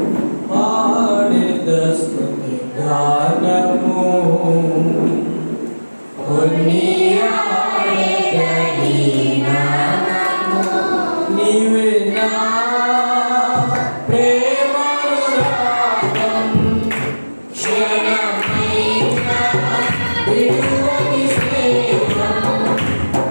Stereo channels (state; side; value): inverted; both; correlation -1.00